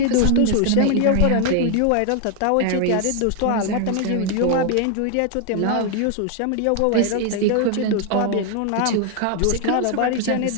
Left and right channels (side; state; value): both; different; correlation 0.00